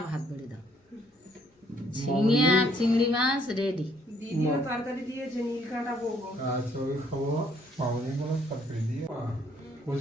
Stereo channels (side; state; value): both; normal; correlation 0.66